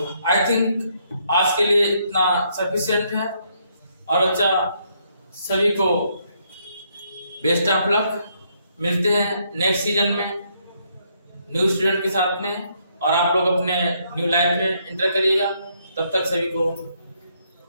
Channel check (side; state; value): both; inverted; correlation -0.72